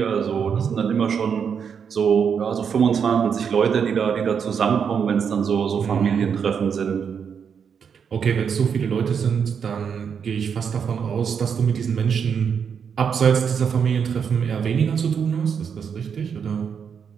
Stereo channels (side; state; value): left; quieter; 7.0 dB